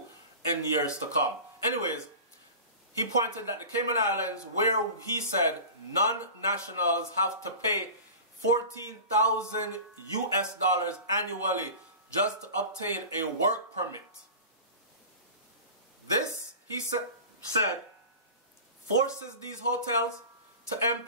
in years to come. Anyways, he pointed that the Cayman Islands, where he said non-nationals have to pay $14,000 US annually just to obtain a work permit. This, he said, forces these hotels to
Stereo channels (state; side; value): inverted; both; correlation -0.35